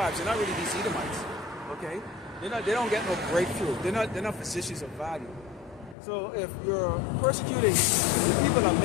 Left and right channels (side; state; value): right; drops out; at 6.0 s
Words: They're not really these Edomites. Okay, they don't get no breakthrough. They're not physicians of value. So if you're persecuting the people that